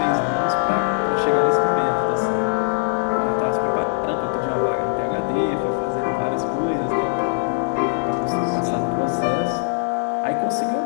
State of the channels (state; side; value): silent; right; 65 dB below the other